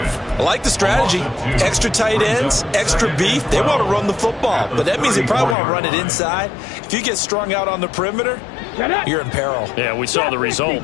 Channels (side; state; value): right; drops out; at 5.6 s